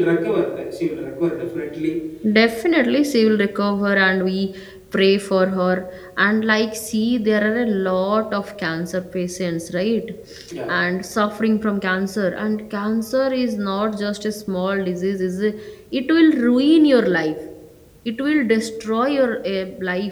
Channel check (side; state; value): both; identical; correlation 1.00